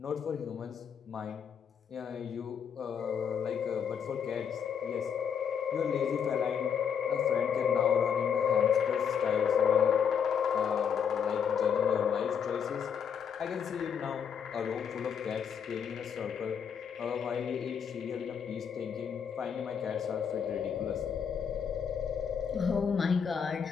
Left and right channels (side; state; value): right; quieter; 7.5 dB